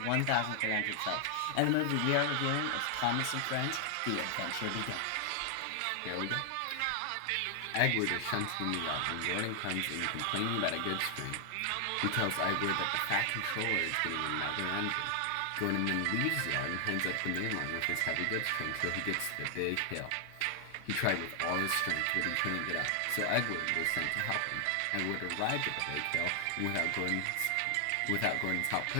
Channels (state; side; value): different; both; correlation 0.00